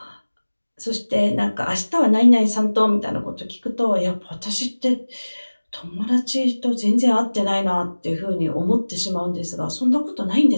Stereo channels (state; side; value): inverted; both; correlation -1.00